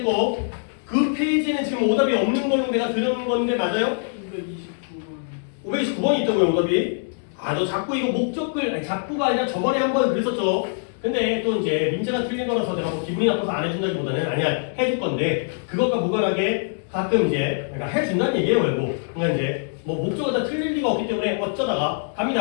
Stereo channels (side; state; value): right; silent; digital silence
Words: 그 페이지는 지금 오답이 없는 걸로 내가 들은 건데 맞아요? 529번이 있다고요, 오답이. 아, 너 자꾸 이거 목적글, 아니 자꾸가 아니라 저번에 한번 그랬었죠. 근데 또 이제 민재가 틀린 거라서 내가 뭐 기분이 나빠서 안 해준다기보다는 아니야, 해줄 건데 그것과 무관하게 가끔 이제 그러니까 해준다는 얘기예요, 결국. 그러니까 이제 뭐 목적을 다 틀릴 리가 없기 때문에 어쩌다가